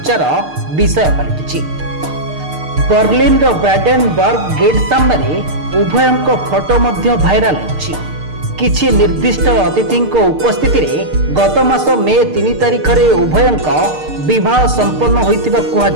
विषय पलटिछि। बर्लिन ब्राडेनबर्ग गेट सामने उभयंक फोटो मध्य भाइराल होछि। किछि निर्दिष्ट अतिथि उपस्थिति रे गत मास मे 3 तारिख रे उभयंक विवाह संपन्न होइतिबा कुहा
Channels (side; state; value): left; late; 6.6 ms